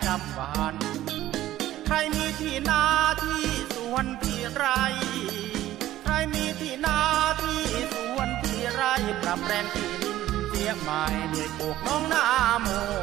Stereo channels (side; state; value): left; quieter; 14.1 dB